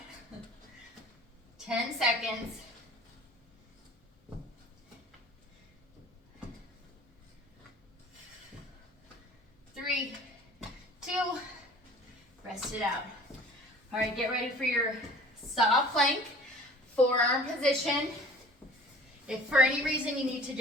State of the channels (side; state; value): both; normal; correlation 0.46